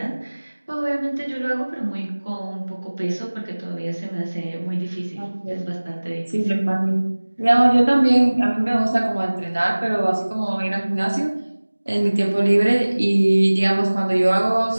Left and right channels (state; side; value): inverted; both; correlation -1.00